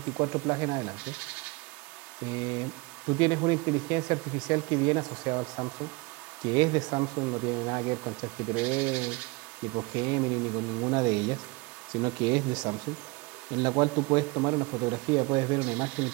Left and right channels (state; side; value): quieter; left; 25.7 dB